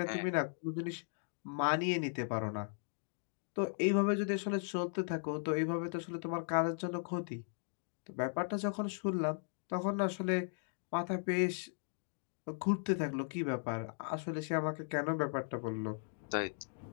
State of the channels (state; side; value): silent; right; digital silence